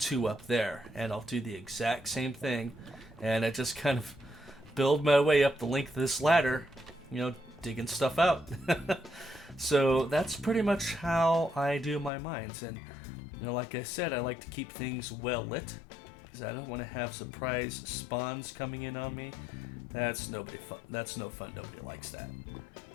up there, and I'll do the exact same thing, and I just kind of build my way up the length of this ladder, digging stuff out. So that's pretty much how I do my mines, and like I said, I like to keep things well lit, because I don't want to have surprise spawns coming in on me. That's no fun. Nobody likes that.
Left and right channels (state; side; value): drops out; right; at 12.1 s